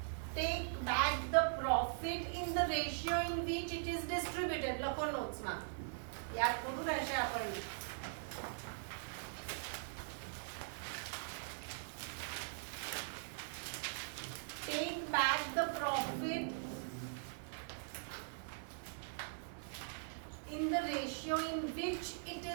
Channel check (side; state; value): left; silent; digital silence